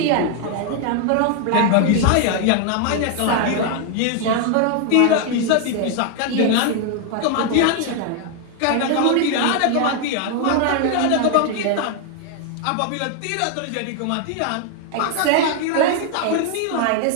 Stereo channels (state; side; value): different; both; correlation 0.00